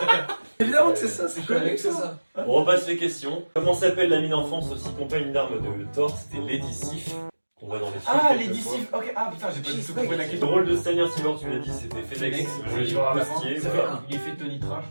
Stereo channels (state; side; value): inverted; both; correlation -1.00